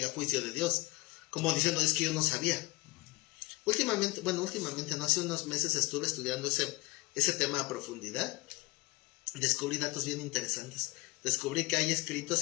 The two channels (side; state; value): right; quieter; 22.6 dB